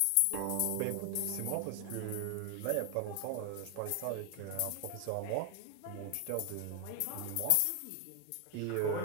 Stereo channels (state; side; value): different; both; correlation 0.00